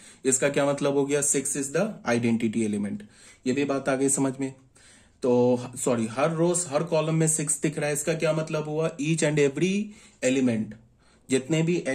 इसका क्या मतलब हो गया, 6 इज द आइडेंटिटी एलिमेंट। ये भी बात आ गई समझ में। तो सॉरी, हर रोज हर कॉलम में 6 दिख रहा है। इसका क्या मतलब हुआ, ईच एंड एवरी एलिमेंट, जितने भी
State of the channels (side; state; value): both; identical; correlation 1.00